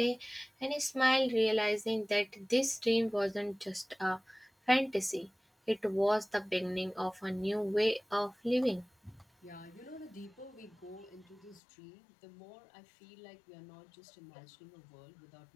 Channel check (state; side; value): drops out; right; at 11.6 s